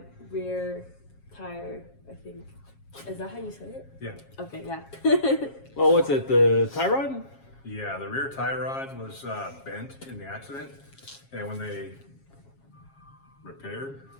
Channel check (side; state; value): right; late; 7.4 ms